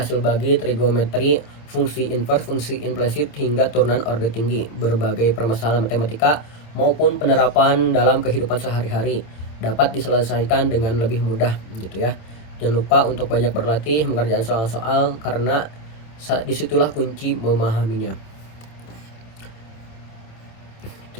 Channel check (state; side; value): late; right; 27 ms